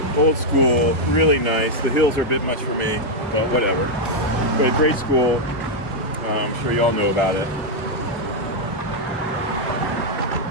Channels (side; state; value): both; normal; correlation -0.01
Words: Old school, really nice. The hills are a bit much for me, but whatever. But a great school. I'm sure you all know about it.